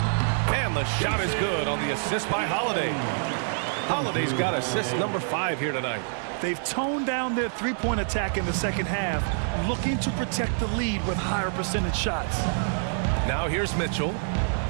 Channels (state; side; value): silent; left; 61 dB below the other